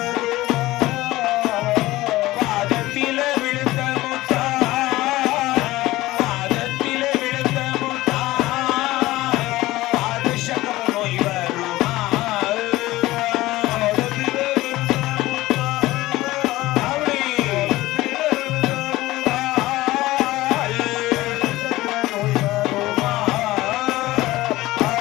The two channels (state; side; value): quieter; right; 17.8 dB